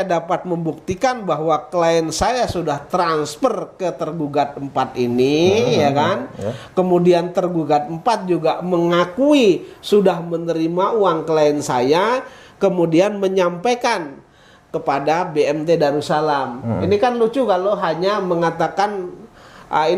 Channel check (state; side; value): identical; both; correlation 1.00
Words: dapat membuktikan bahwa klien saya sudah transfer ke tergugat 4 ini, ya kan? Kemudian tergugat 4 juga mengakui sudah menerima uang klien saya, kemudian menyampaikan kepada BMT Darussalam. Ini kan lucu kalau hanya mengatakan